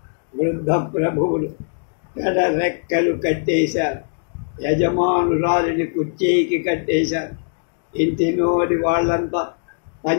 వృద్ధ ప్రభువులు రెక్కలు కట్టేశారు, యజమానురాలిని కుర్చీకి కట్టేశారు. ఇంటిలోని వాళ్ళంతా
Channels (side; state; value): right; silent; digital silence